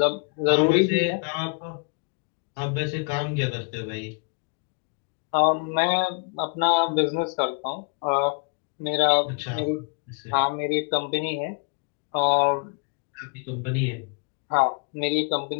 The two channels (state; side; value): quieter; right; 38.9 dB